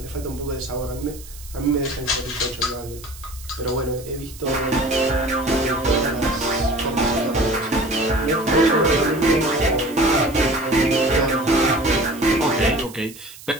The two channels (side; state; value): right; noise; hiss, 18 dB below the sound